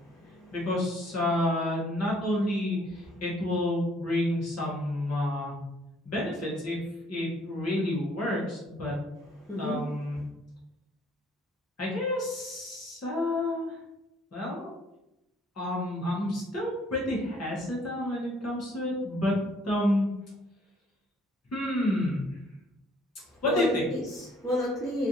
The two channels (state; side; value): normal; both; correlation 0.62